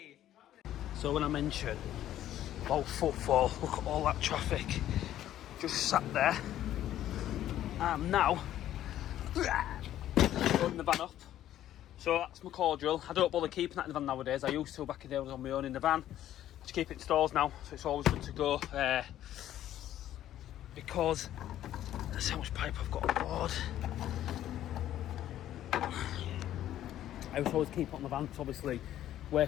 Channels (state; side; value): quieter; right; 12.3 dB